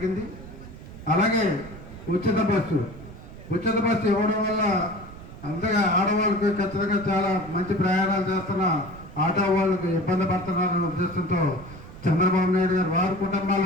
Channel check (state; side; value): noise; right; rumble, 15 dB below the sound